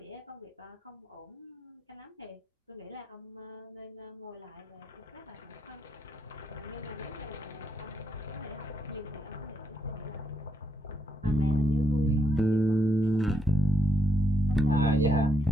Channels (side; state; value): both; normal; correlation 0.79